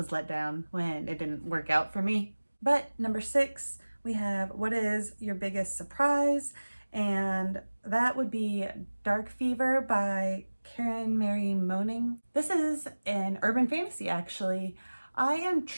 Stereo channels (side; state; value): both; inverted; correlation -1.00